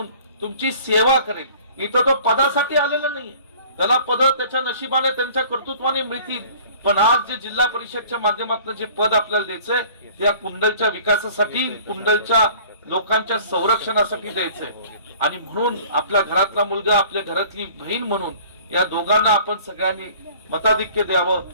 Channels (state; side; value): inverted; both; correlation -0.50